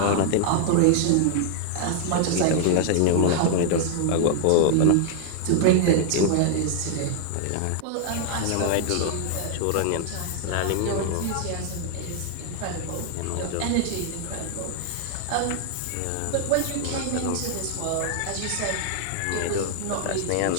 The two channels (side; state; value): both; different; correlation 0.00